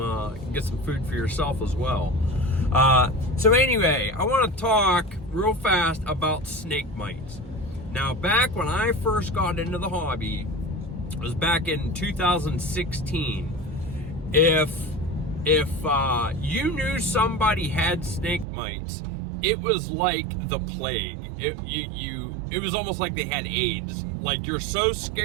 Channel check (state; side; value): drops out; left; at 18.4 s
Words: food for yourself as well? So anyway, I want to talk real fast about snake mites. Now, back when I first got into the hobby, it was back in 2016. If you knew somebody had snake mites, it was like the plague. It was almost like they had AIDS. Like, you're so